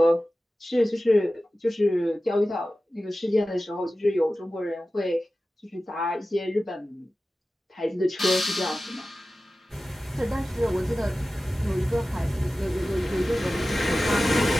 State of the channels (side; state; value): both; normal; correlation 0.95